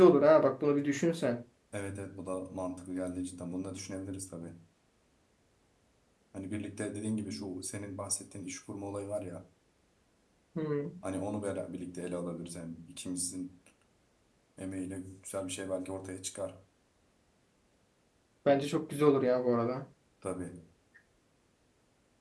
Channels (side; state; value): both; identical; correlation 1.00